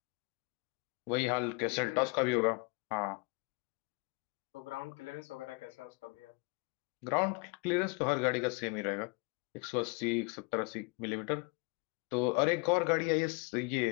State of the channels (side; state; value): right; quieter; 30.8 dB